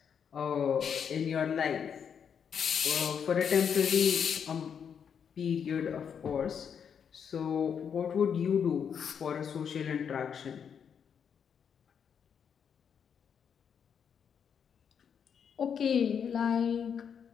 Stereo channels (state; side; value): quieter; right; 7.4 dB